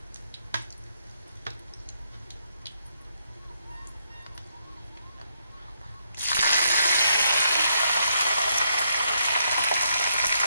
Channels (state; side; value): inverted; both; correlation -0.76